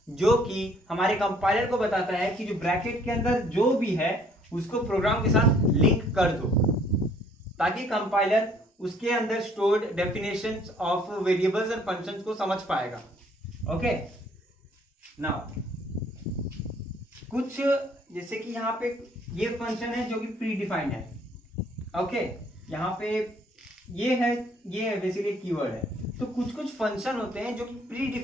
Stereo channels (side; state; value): both; normal; correlation 0.60